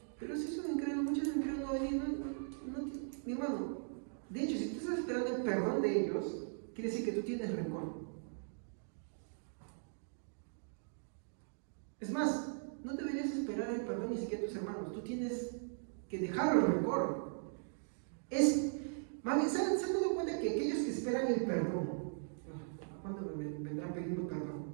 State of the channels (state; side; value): silent; left; digital silence